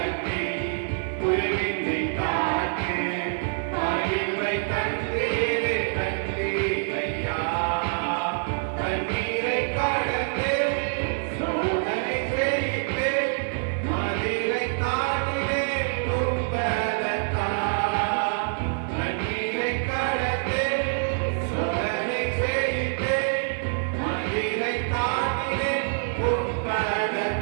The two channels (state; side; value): silent; left; 59 dB below the other